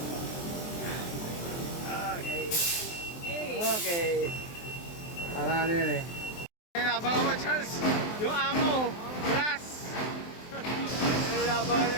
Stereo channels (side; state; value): right; late; 23 ms